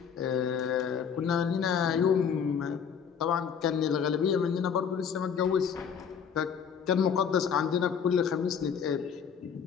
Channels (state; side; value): quieter; right; 7.2 dB